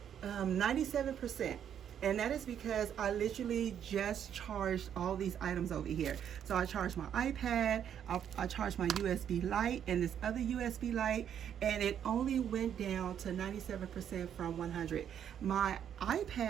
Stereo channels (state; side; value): quieter; left; 9.1 dB